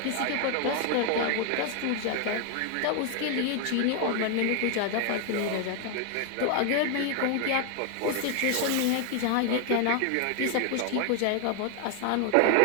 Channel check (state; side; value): different; both; correlation 0.00